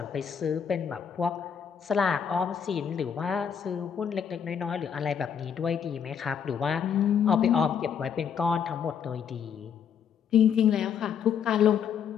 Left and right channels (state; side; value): quieter; right; 7.7 dB